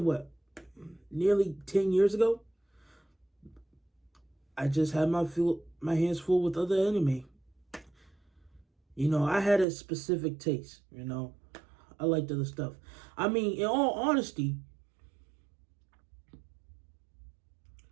what, nearly 10 years ago? I just had my hands full with other anime. I had a specific taste. I liked other stuff. I mean, in all honesty,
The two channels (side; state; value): left; drops out; at 9.7 s